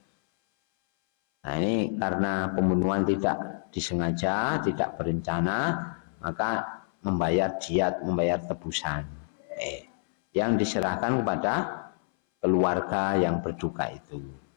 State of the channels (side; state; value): right; silent; 59 dB below the other